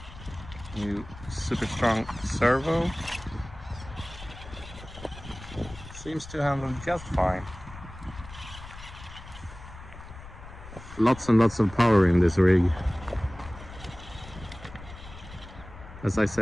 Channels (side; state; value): left; noise; rumble, 15 dB below the sound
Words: new super strong servo. Seems to handle just fine. Lots and lots of power in this rig. As I